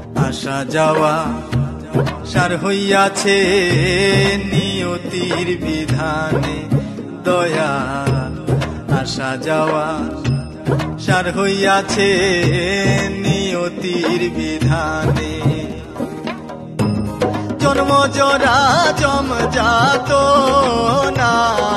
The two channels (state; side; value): identical; both; correlation 1.00